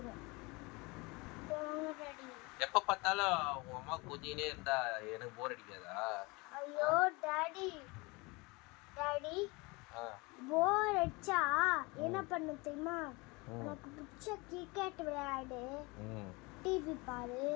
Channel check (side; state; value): right; quieter; 25.8 dB